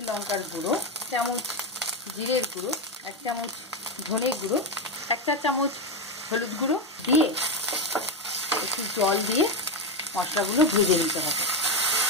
লঙ্কার গুঁড়ো, 1 চামচ জিরের গুঁড়ো, 1 চামচ ধনের গুঁড়ো, 1 চা চামচ হলুদ গুঁড়ো দিয়ে একটু জল দিয়ে মশলাগুলো ভেজে নিতে হবে।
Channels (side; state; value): both; normal; correlation 0.11